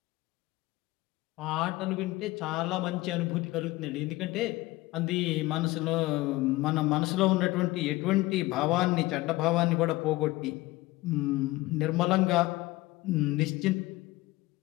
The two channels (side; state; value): right; quieter; 19.3 dB